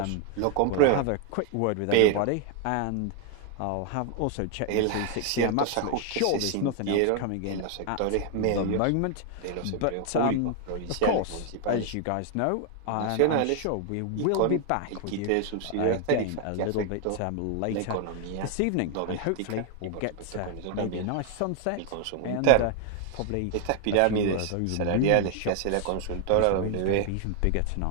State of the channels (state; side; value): different; both; correlation 0.00